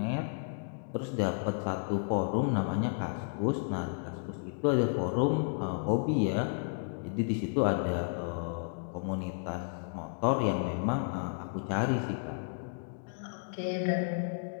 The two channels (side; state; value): right; silent; digital silence